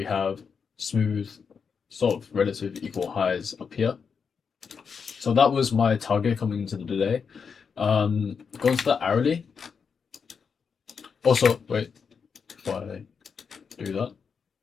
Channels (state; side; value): quieter; right; 6.0 dB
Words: have smooth, sort of relative equal highs up here. So that was my target coming into the day. Going to the hourly. Also, wait, before I do that,